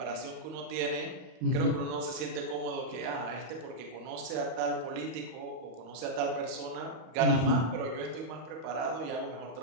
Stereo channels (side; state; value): left; late; 31 ms